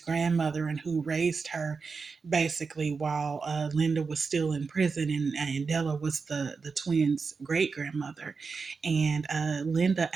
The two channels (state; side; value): quieter; left; 4.9 dB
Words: and who raised her basically while Linda was still in prison, and Della was the twins' great grandmother. And Linda